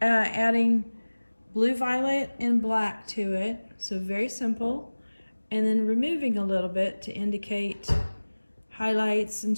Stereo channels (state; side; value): inverted; both; correlation -1.00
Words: adding blue, violet, and black to it. So very simple. And then removing a little bit to indicate highlights and